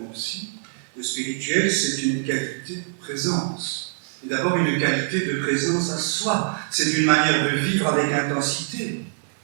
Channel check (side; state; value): left; silent; 63 dB below the other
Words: aussi, le spirituel, c'est une qualité de présence. Et d'abord une qualité de présence à soi. C'est une manière de vivre avec intensité.